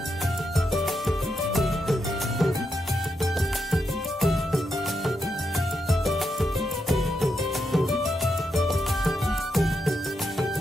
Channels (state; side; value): normal; both; correlation 0.83